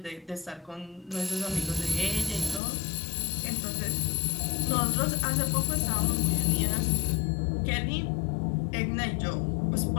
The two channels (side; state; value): right; drops out; at 2.6 s